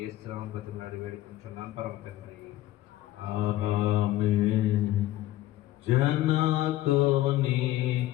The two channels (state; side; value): quieter; right; 14.9 dB